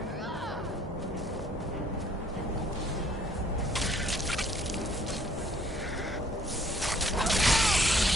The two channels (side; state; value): both; normal; correlation 0.61